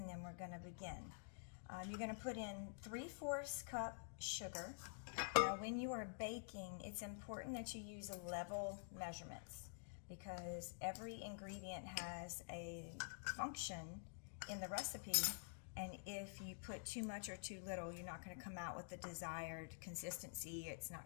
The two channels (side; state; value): right; silent; digital silence